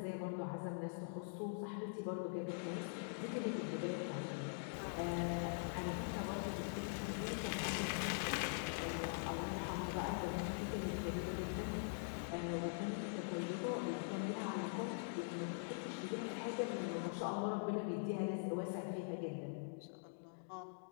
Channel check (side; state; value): right; silent; digital silence